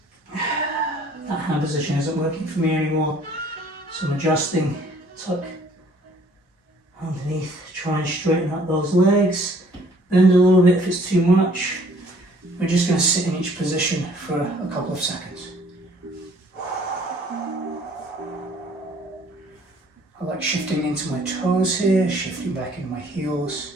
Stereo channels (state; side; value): normal; both; correlation 0.57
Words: That hand position isn't working for me anymore, so I'm adjusting. Tuck underneath, try and straighten out those legs. Bend a little bit if it's too much. We're just going to sit in each position for a couple of seconds. I like shifting into my toes here, shifting back into my heels.